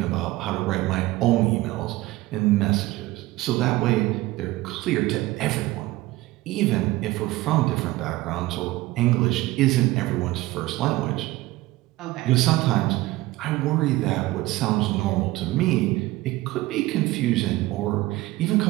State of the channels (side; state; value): left; quieter; 18.4 dB